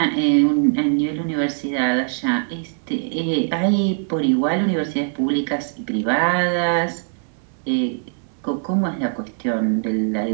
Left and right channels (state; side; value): silent; left; digital silence